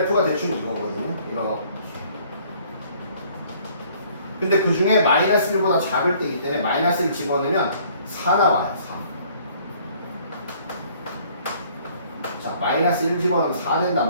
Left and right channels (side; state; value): both; inverted; correlation -0.58